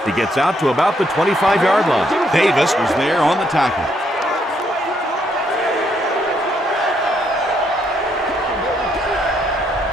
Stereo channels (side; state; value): both; normal; correlation 0.73